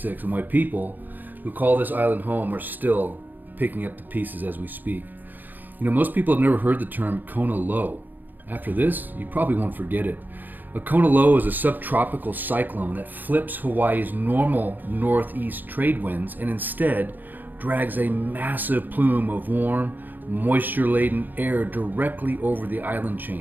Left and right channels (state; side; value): late; left; 0.090 ms